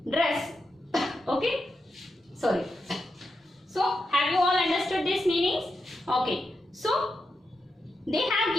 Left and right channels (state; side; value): normal; both; correlation 0.87